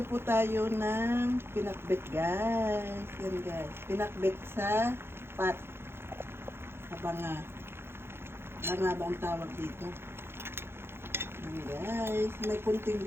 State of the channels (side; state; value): left; late; 0.11 ms